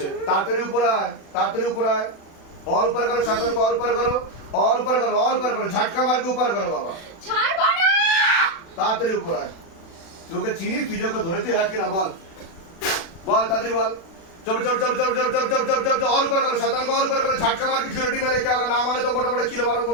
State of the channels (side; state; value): right; late; 36 ms